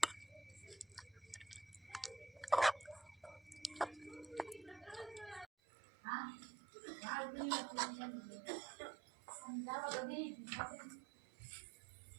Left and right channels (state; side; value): drops out; left; at 5.5 s